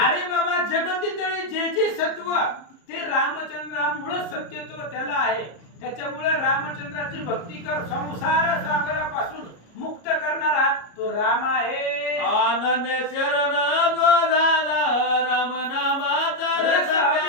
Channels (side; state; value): right; late; 34 ms